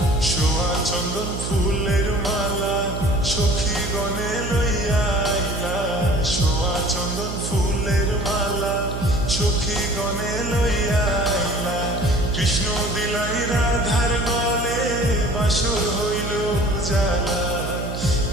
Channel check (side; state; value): right; noise; hum, 5 dB below the sound